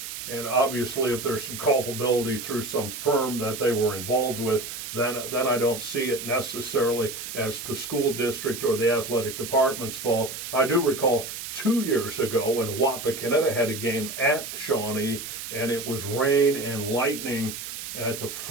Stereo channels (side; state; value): right; noise; hiss, 8 dB below the sound